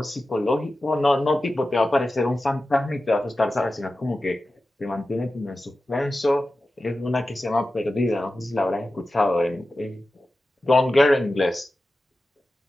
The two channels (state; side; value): normal; both; correlation 0.94